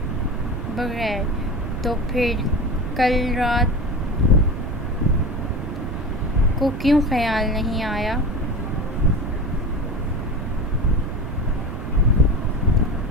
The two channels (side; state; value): right; noise; rumble, 5 dB below the sound